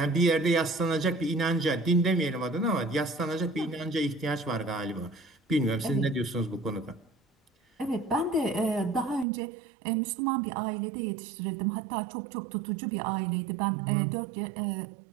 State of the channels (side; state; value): left; drops out; at 9.2 s